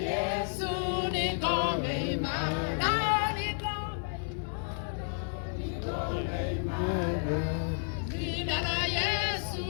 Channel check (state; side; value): silent; right; 57 dB below the other